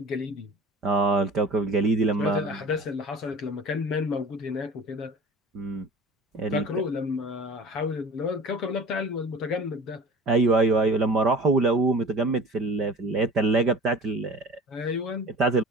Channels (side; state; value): both; normal; correlation 0.41